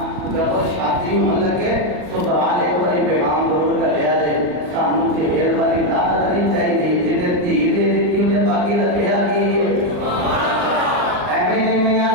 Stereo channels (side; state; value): left; late; 39 ms